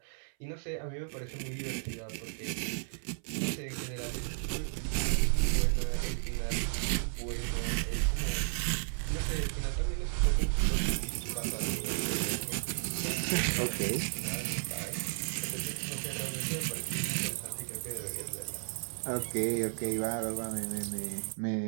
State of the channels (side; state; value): left; silent; 55 dB below the other